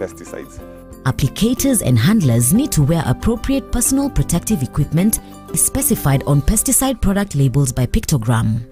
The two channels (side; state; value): both; identical; correlation 1.00